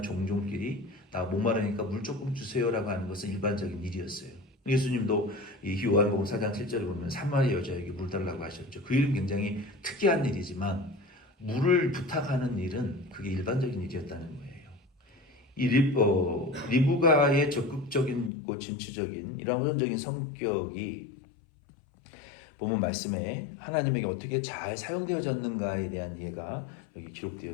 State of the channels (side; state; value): right; drops out; at 18.3 s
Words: 종족끼리 나 목마르니까 물 조금 주세요라고 하는 것은 일반적인 일이었어요. 예수님도 이 요한복음 4장 7절에 보면 사마리 여자에게 물 달라고 하셨죠. 그 일은 굉장히 특이한 일이지만 물을 부탁하는 일은 그게 일반적인 일이었다는 거예요. 이 리브가의 적극적인 진취적인 이런 호전적인 성격이 보면 말씀에 하나님에게 어떻게 잘 사용되어졌는가에 대한 이해가 여기